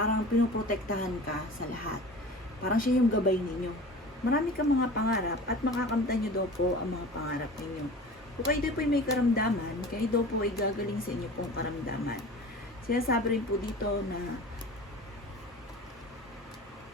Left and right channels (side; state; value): both; normal; correlation 0.38